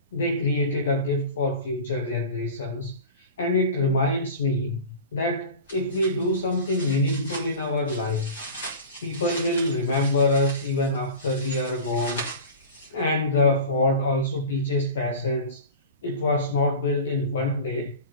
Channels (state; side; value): inverted; both; correlation -0.34